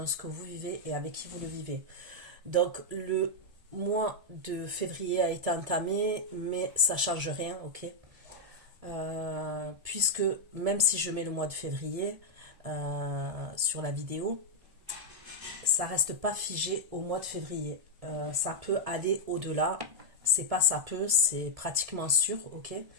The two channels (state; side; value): late; left; 1.7 ms